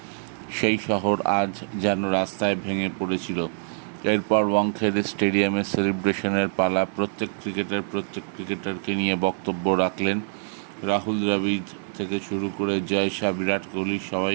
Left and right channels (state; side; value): silent; left; digital silence